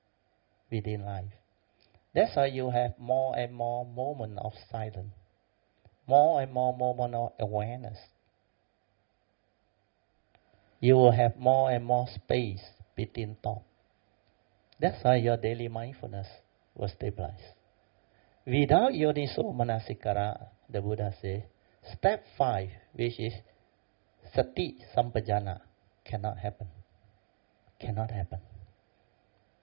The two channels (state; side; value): silent; left; digital silence